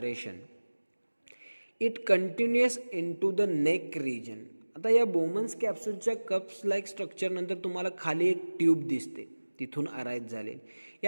It continuous into the neck region. आता या बोमन्स कॅप्सूलच्या कप्स लाईक स्ट्रक्चरनंतर तुम्हाला खाली एक ट्यूब दिसते, तिथून अराईज झाले.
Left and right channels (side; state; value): both; inverted; correlation -1.00